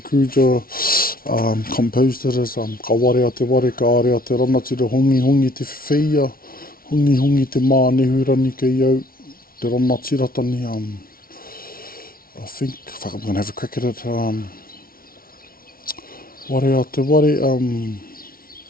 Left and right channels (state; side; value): late; right; 0.43 ms